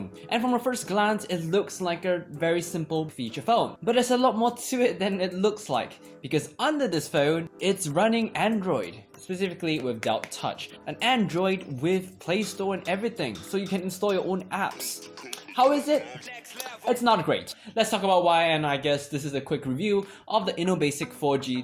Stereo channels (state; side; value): identical; both; correlation 1.00